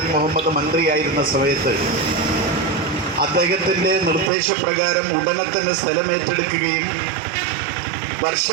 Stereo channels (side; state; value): left; drops out; at 4.3 s